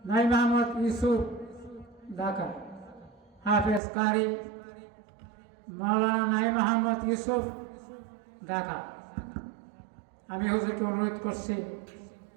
নাঈম আহমদ ইউসুফ ঢাকা। হাফেজ কারি মাওলানা নাঈম আহমদ ইউসুফ ঢাকা। আমি হুজুরকে অনুরোধ করছি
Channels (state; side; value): drops out; left; at 3.8 s